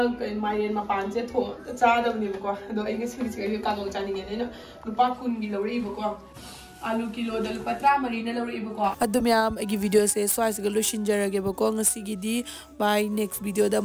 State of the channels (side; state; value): both; identical; correlation 1.00